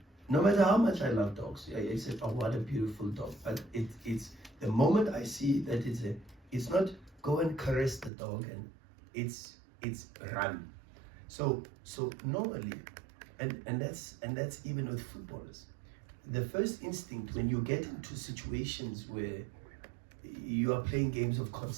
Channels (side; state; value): left; drops out; at 8.1 s